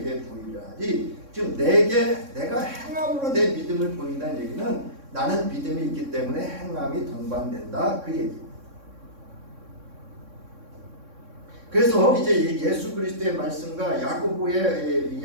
보이라지. 지금 내가 행함으로 내 믿음을 보인다는 얘기는 나는 믿음이 있기 때문에 행함이 동반된다, 그 얘기. 그래서 이제 예수 그리스도의 말씀과 야고보의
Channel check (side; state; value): left; late; 3.6 ms